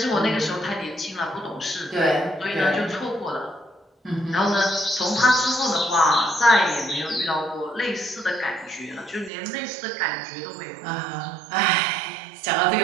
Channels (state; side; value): drops out; left; at 9.3 s